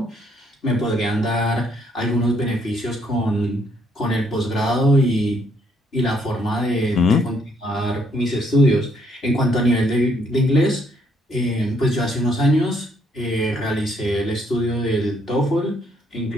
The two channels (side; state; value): both; normal; correlation 0.70